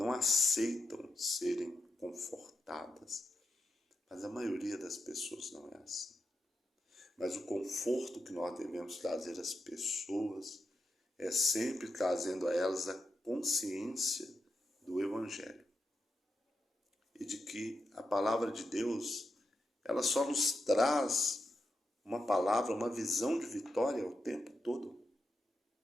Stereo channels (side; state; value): both; normal; correlation 0.86